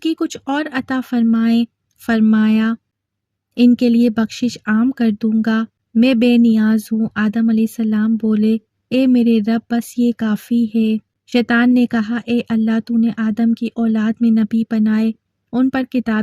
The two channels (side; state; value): both; identical; correlation 1.00